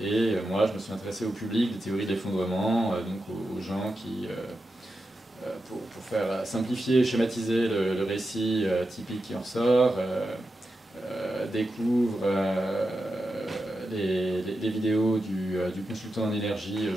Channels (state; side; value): normal; both; correlation 0.89